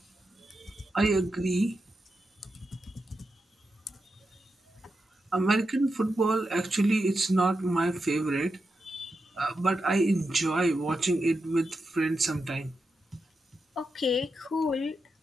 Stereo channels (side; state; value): both; normal; correlation 0.88